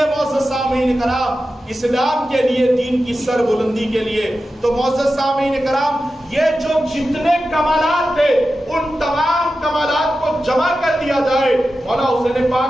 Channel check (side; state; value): both; normal; correlation 0.92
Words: معزز سامعین کرام؟ اسلام کے لیے، دین کی سر بلندی کے لیے. تو معزز سامعین کرام یہ جو جتنے کمالات تھے ان تمام کمالات کو جمع کر دیا جائے مولا حسین